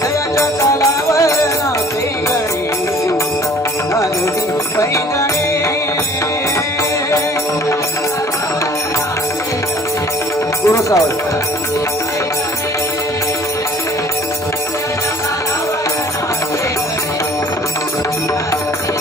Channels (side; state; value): both; normal; correlation 0.53